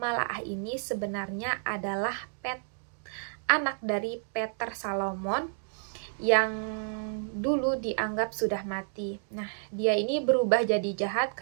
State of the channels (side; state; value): left; silent; digital silence